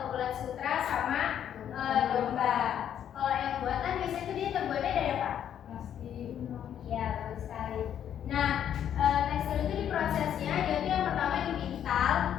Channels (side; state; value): right; quieter; 9.7 dB